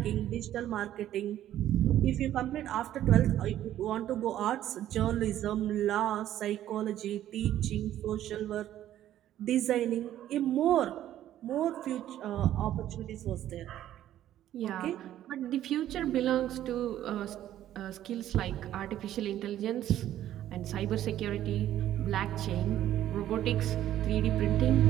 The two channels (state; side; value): quieter; left; 12.3 dB